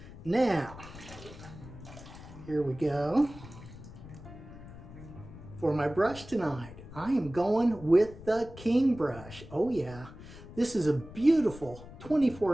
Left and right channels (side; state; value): left; noise; rumble, 16 dB below the sound